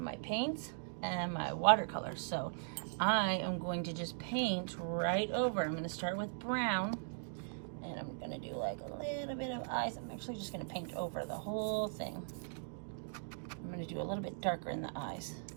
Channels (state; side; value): silent; left; digital silence